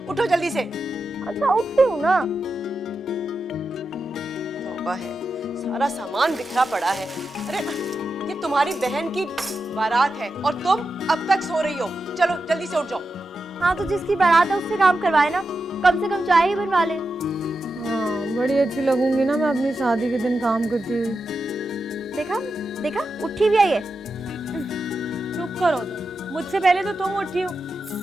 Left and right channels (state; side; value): normal; both; correlation 0.89